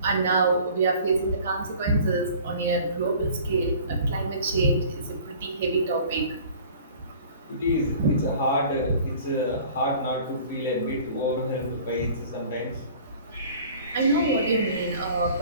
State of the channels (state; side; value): inverted; both; correlation -0.48